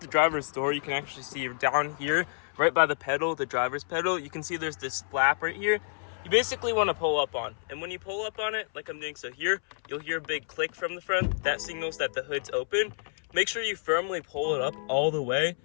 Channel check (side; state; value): right; silent; 59 dB below the other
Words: driver's door, you can actually see down here, right by the pedal, the driver's pedal, you can see there's this flap right here. You basically want to pull up on. And when you pull up on it, like I'm doing so here, you'll hear a big click from the front. That signals that the hood's open. Make sure you firmly pull it up all the way